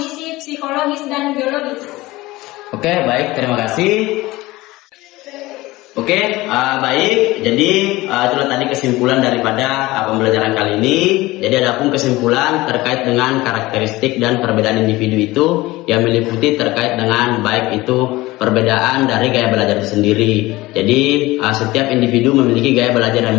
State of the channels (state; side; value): quieter; right; 19.4 dB